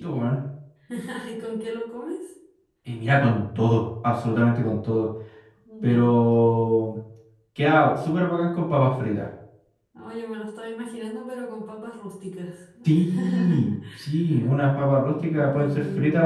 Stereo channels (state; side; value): identical; both; correlation 1.00